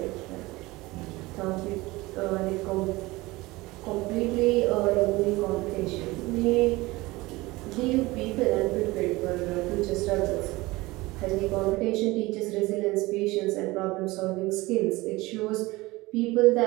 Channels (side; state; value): left; quieter; 21.0 dB